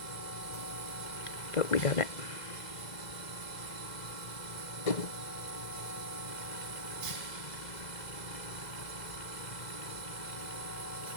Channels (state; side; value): late; right; 2.0 ms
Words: but we got it.